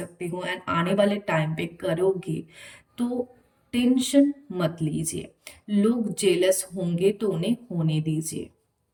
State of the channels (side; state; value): both; identical; correlation 1.00